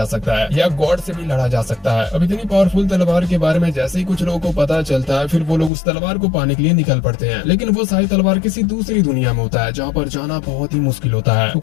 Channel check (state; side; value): drops out; right; at 5.7 s